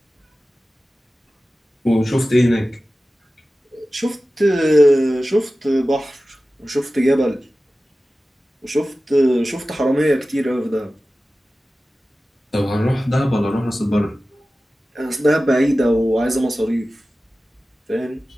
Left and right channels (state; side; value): normal; both; correlation 0.95